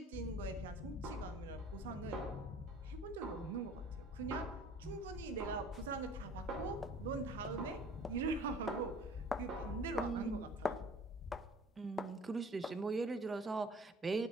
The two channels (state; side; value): normal; both; correlation 0.49